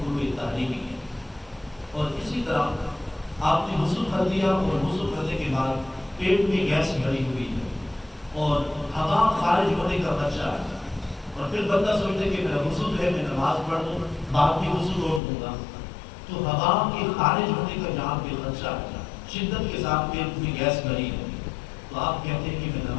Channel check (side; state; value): right; drops out; at 15.2 s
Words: تحریمی ہے. اور اسی طرح آپ نے وضو کر دیا اور وضو کرنے کے بعد پیٹ میں گیس بھری ہوئی ہے اور ہوا خارج ہونے کا خدشہ ہے اور پھر بندہ سوچتے کہ میرا وضو جو ہے میں نماز پڑھ لوں بعد میں وضو روک دوں گا، تو ہوا کے خارج ہونے کا جہاں پہ خدشہ ہے، شدت کے ساتھ پیٹ میں گیس بھری ہے، تو آپ کہتے ہیں کہ میں